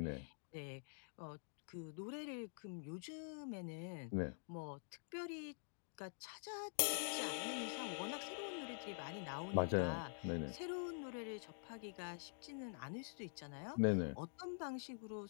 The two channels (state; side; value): silent; right; digital silence